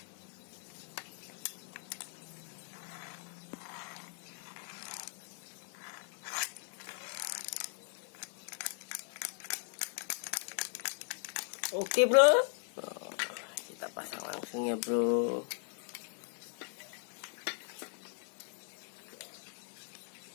Oke bro, kita pasang langsung ya bro.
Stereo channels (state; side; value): silent; right; 52 dB below the other